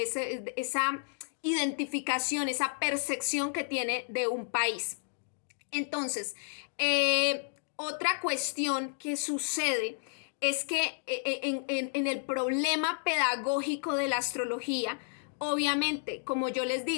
identificación, esa percepción que tiene de un país. Entonces, otra cuestión que sucede es que en el problema pedagógico de la astrología, obviamente, como yo les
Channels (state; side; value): silent; right; digital silence